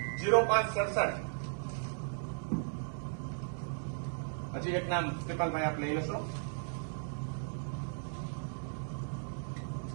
હજી એક નામ કૃપાલભાઈ આપ લઈ લેશો.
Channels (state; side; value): silent; left; 54 dB below the other